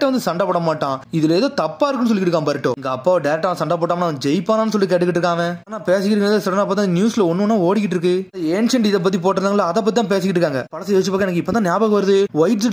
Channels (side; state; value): both; identical; correlation 1.00